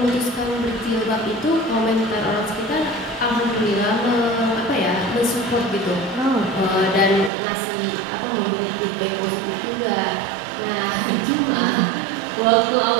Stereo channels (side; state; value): left; drops out; at 7.3 s